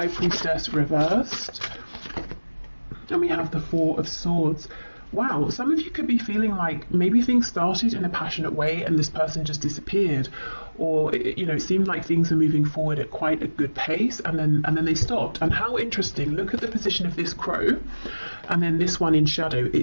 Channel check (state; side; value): inverted; both; correlation -1.00